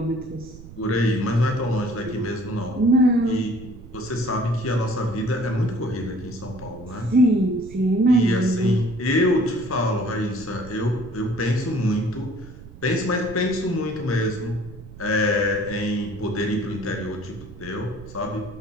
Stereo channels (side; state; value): right; noise; rumble, 17 dB below the sound